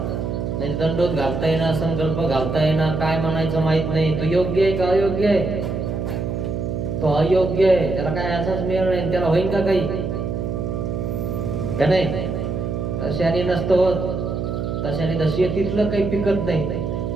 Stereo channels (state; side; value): noise; right; hum, 3 dB below the sound